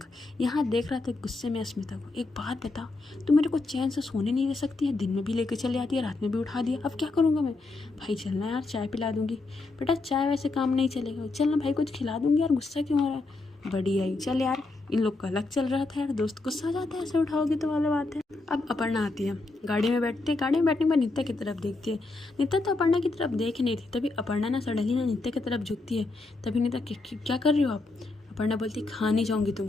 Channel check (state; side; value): quieter; right; 3.3 dB